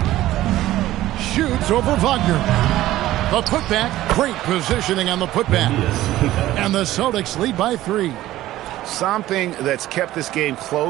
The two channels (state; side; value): quieter; left; 15.1 dB